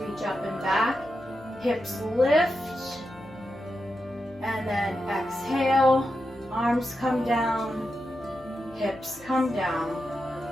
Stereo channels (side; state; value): left; noise; hum, 24 dB below the sound